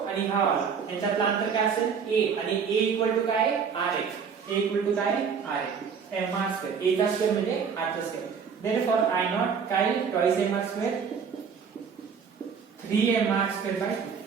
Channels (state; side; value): quieter; left; 6.4 dB